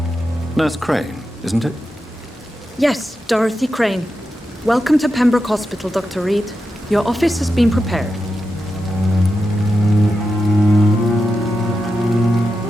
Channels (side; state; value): both; normal; correlation 0.89